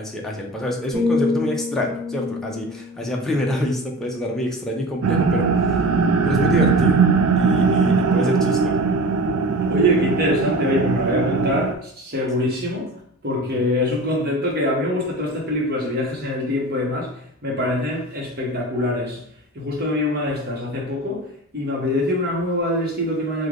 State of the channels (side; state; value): both; normal; correlation 0.34